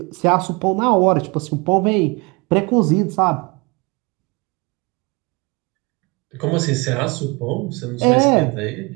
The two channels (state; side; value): quieter; left; 27.4 dB